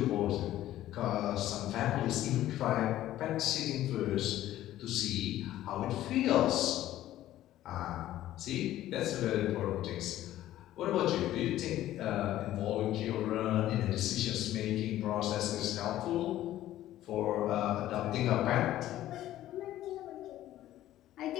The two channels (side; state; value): right; quieter; 13.8 dB